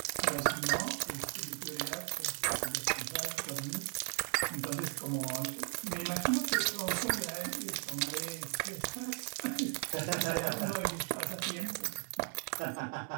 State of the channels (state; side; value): quieter; left; 27.9 dB